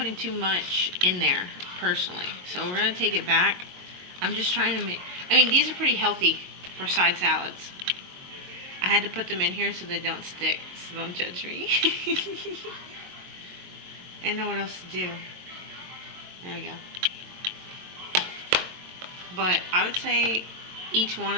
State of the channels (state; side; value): late; left; 22 ms